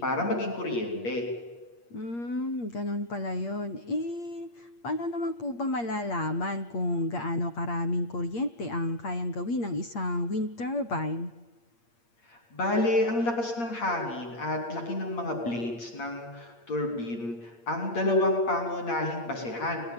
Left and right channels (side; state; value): right; late; 8.6 ms